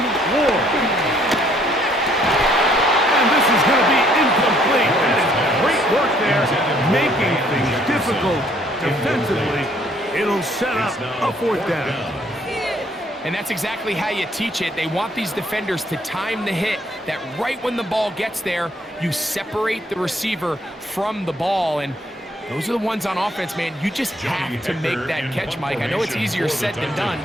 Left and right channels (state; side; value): normal; both; correlation 0.65